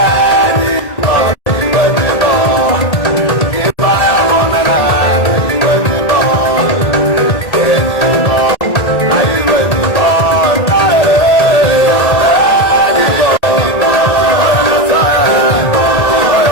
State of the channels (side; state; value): right; late; 1.8 ms